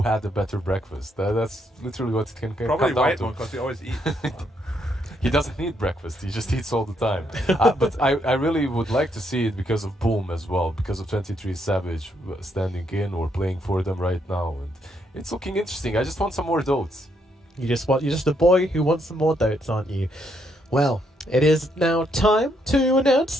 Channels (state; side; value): normal; both; correlation 0.75